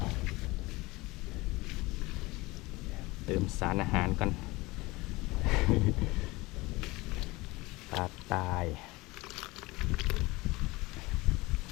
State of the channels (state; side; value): quieter; right; 21.8 dB